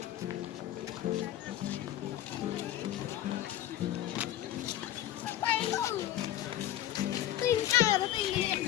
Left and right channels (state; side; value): quieter; right; 12.8 dB